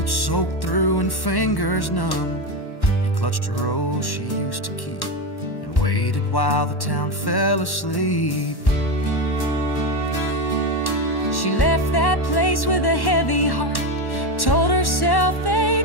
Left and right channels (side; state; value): right; late; 1.1 ms